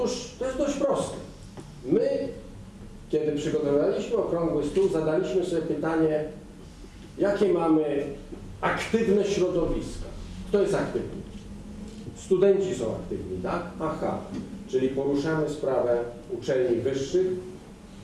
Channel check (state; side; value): identical; both; correlation 1.00